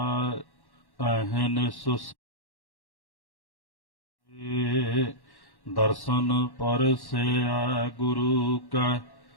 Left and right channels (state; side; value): late; right; 1.1 ms